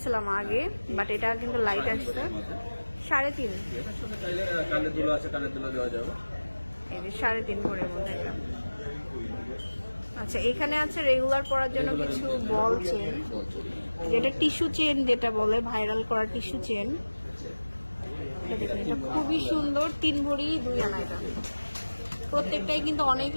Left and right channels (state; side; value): inverted; both; correlation -1.00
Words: আগে, বাট এটা কিন্তু লাইট আসছে। 3.5। এটার সাথে চাইলে কানের দুলো আছে, কানের দুলো দেওয়া যাবে। এই যে 3.5 ভরির মধ্যে এটা। আচ্ছা, এখানে আছে রেগুলার পরার জন্য কিছু বল চেন, যেটা টিস্যু চেন যেটা বলে, ভাইরাল করা টিস্যু চেন। এটা দেখুন, এটা খুবই সুন্দর। 3 ভরি 2 আনা এটা। প্রত্যেকটাই কিন্তু অনেক